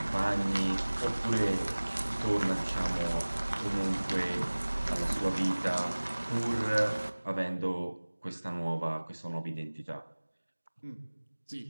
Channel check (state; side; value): inverted; both; correlation -1.00